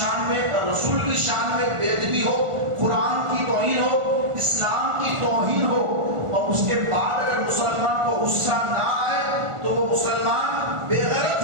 میں، رسول کی شان میں بے ادبی ہو، قرآن کی توہین ہو، اسلام کی توہین ہو، اور اس کے بعد اگر مسلمان کو غصہ نہ آئے تو وہ مسلمان بے غیرت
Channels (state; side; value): late; left; 1.4 ms